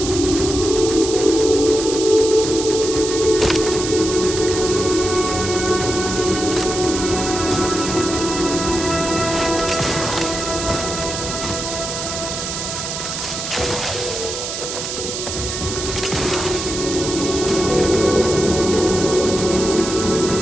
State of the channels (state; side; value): noise; right; hiss, 5 dB below the sound